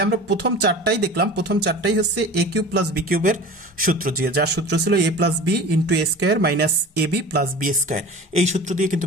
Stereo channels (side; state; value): both; normal; correlation 0.37